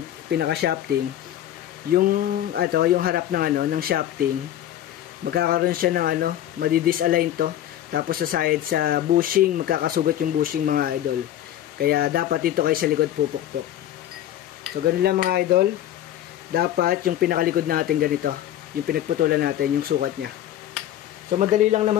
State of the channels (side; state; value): right; quieter; 12.1 dB